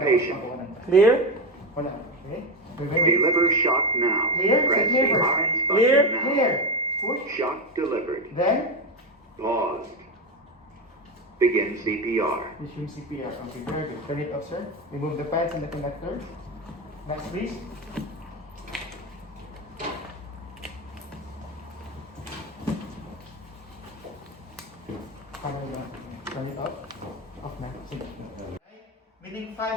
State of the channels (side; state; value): both; normal; correlation 0.15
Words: patient. Clear? Wala. Okay. Wait, wait, wait. Deliver shock now. Clear. Press Clear. the orange Clear. button now. Clear. Push. Shock delivered. Then, Paused. Begin CPR. resume CPR. Okay, very good. Turn it off, sir. Remove the pads and the connector. Next, please. Turn it off. Off na. Sige. Meaning